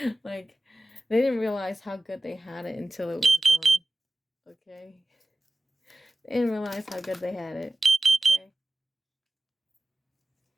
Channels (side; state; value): both; normal; correlation 0.96